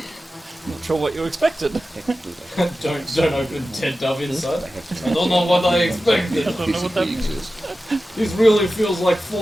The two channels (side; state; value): both; normal; correlation 0.94